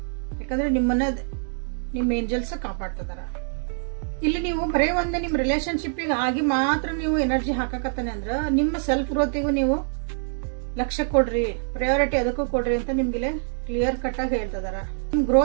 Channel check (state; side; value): silent; left; 59 dB below the other